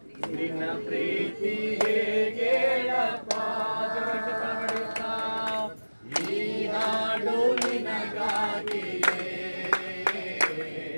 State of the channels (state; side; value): inverted; both; correlation -1.00